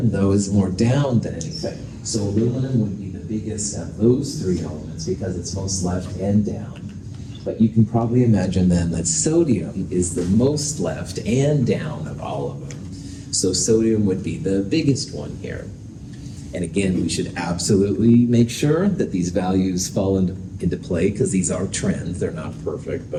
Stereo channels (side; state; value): both; identical; correlation 1.00